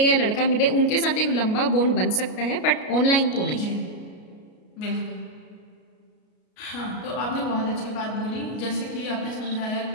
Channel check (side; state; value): right; late; 33 ms